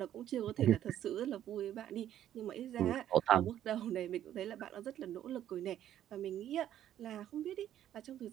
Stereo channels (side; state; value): left; quieter; 11.4 dB